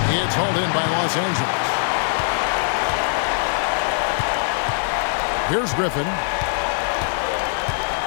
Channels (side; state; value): right; silent; digital silence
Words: It's hauled in by Los Angeles. Here's Griffin.